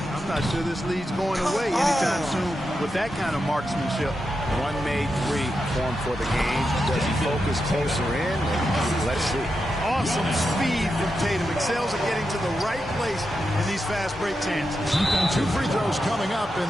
I'm not sure this lead's going away anytime soon with that kind of marksmanship. One made three formed for the game. Does he focus closer in? Let's see. Awesome speed from Tatum. Excels at getting to the right place in these fast break chances. 2 free throws coming up, and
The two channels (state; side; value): normal; both; correlation 0.87